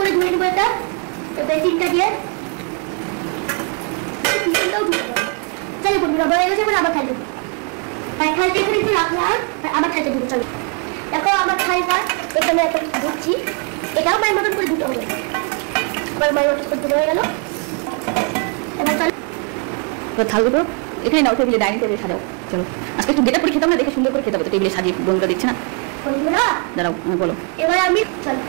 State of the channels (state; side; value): quieter; left; 36.5 dB